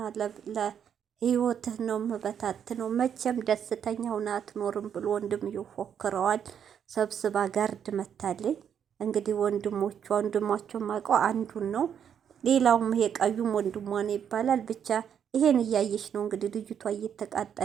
ለህይወትህ ነው መበታት ነው መቼም ደስተኛ ሆና አትኖርም ብሎ ወንድም ይፎክረዋል። ሰብስባ ጋርድ መታለኝ። እንግዲህ ወንድሟቸው ማውቀው አንዱን ነው። ሌላውም ይሄ ቀዩም ወንድሟ ነው ይባላል። ብቻ ይሄን እያየች ነው እንግዲህ ልጅቷ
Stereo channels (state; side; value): quieter; left; 8.4 dB